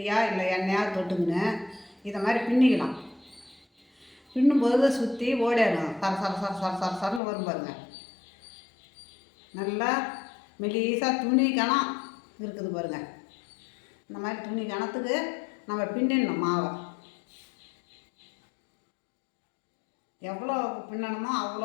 இல்லை எண்ணெயாக தொட்டுங்கன்னு இதை மாதிரி பின்னிக்கலாம். பின்னும்போது சுற்றி ஓடிடணும். சரன்னு வரும் பாருங்கள். நல்லா மெலிசாக துணி கணம் இருக்குது பாருங்கள். இந்த மாதிரி துணி கணத்துக்கு நம்ம பின்னிடணும் மாவை. எவ்வளோ பின்னணுமோ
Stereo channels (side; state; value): right; drops out; at 7.2 s